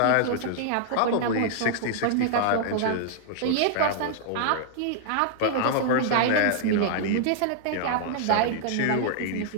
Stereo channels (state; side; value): different; both; correlation -0.01